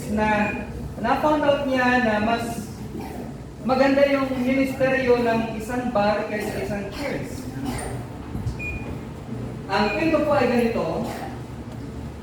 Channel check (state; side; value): identical; both; correlation 1.00